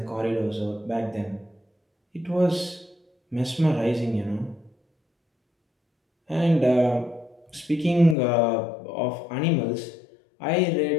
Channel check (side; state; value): right; drops out; at 8.2 s